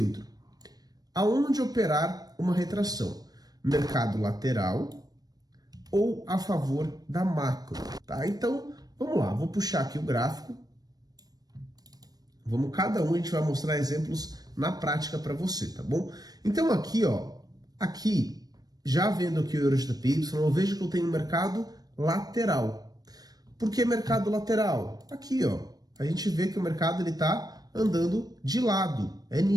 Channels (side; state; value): left; late; 0.19 ms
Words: aonde operar uma retração? Mercado lateral ou a favor da macro, tá? Então, vamos lá, vou puxar aqui o gráfico. Cada um a gente vai mostrar exemplos na prática para você, tá bom? Então aqui, ó, já vendo aqui o Euro GBP, eu vejo que eu tenho um mercado lateral. Por que mercado lateral? Aqui, ó, a gente vê que o mercado ele tá andando de lado, é